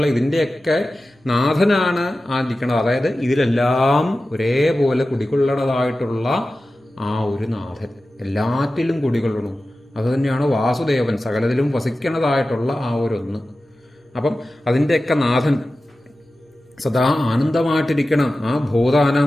ഇതിൻ്റെയൊക്കെ നാഥനാണ് ഇരിക്കുന്നത്. അതായത് ഇതിലെല്ലാം ഒരേപോലെ കുടികൊള്ളണതായിട്ടുള്ള ആ ഒരു നാഥൻ എല്ലാറ്റിലും കുടികൊള്ളണം. അത് തന്നെയാണ് വാസുദേവൻ, സകലത്തിലും വസിക്കണതായിട്ടുള്ള ആ ഒരു അപ്പം അതിൻ്റെയൊക്കെ നാഥൻ സദാ ആനന്ദമായിട്ടിരിക്കണം. ആ ഭൂതാനം,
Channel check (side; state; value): both; normal; correlation 0.94